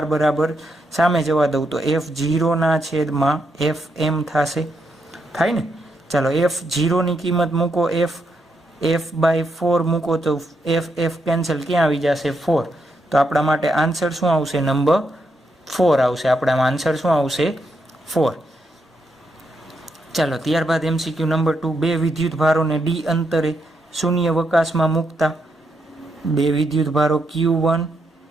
બરાબર સામે જવા દઉં તો F0 ના છેદમાં FM થશે, થાય ને. ચાલો F0 ની કિંમત મૂકો, F/4 મૂકો તો F કેન્સલ, ક્યાં આવી જશે 4. તો આપણા માટે આન્સર શું આવશે, નંબર 4 આવશે. આપણામાં આન્સર શું આવશે, 4. ચાલો ત્યારબાદ MCQ નંબર 2. બે વિદ્યુતભારોને D અંતરે શૂન્યાવકાશમાં મૂકતા. બે વિદ્યુતભારો Q1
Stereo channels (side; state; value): both; normal; correlation 0.80